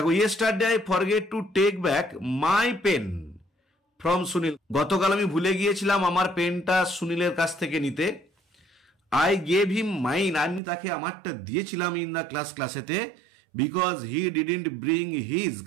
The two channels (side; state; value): left; drops out; at 10.6 s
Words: yesterday I forget to take back my pen from Sunil. গতকাল আমি ভুলে গিয়েছিলাম আমার পেনটা সুনীলের কাছ থেকে নিতে। আই গেভ হিম মাইন, আমি তাকে আমারটা দিয়েছিলাম ইন দ্য ক্লাসেতে, because he didn't bring his,